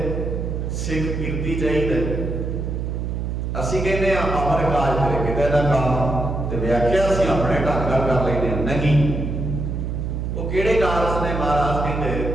सिख कीर्ति चाहिए। असीं कहते हैं अमर काज तेरे किते ना काम, ते व्याख्या असीं अपने ढंग नाल कर लैंदे हां। नहीं, वो किहड़े कारज ने? महाराज कहते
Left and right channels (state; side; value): noise; right; hum, 3 dB below the sound